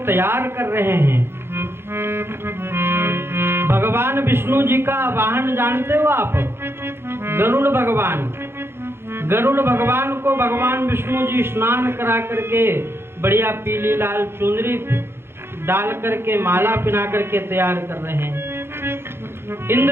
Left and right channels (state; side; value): late; left; 0.11 ms